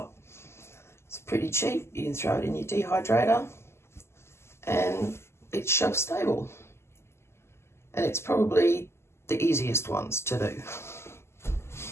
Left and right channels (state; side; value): late; right; 0.12 ms